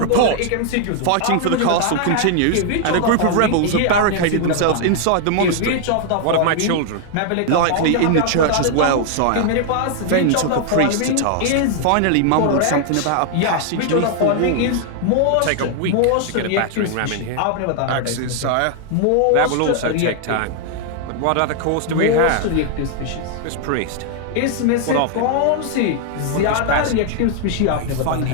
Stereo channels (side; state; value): both; different; correlation 0.00